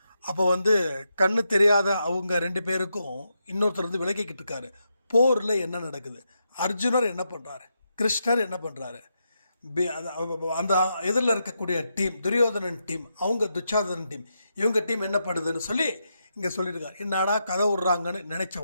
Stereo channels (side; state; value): both; inverted; correlation -0.83